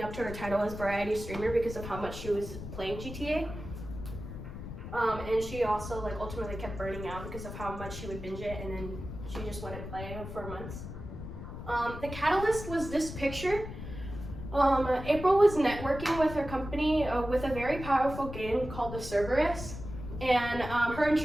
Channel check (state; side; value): noise; left; rumble, 9 dB below the sound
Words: up to her title as variety streamer because of how much she was playing GTA. And she also like ultimately kept burning out because of how much she would binge it, and then she just wouldn't play for months. The catalyst was this picture. April was networking with her company with a very powerful game called the Cerberus, and her